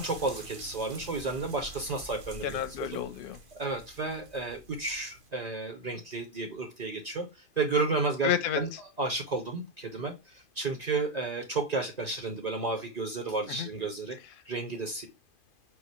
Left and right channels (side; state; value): right; late; 2.5 ms